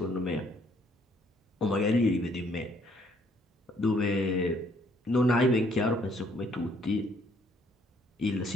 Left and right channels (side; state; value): both; normal; correlation 0.66